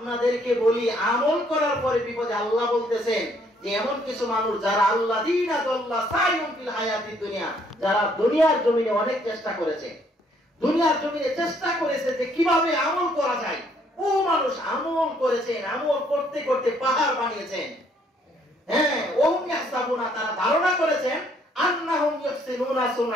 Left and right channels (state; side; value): normal; both; correlation 0.66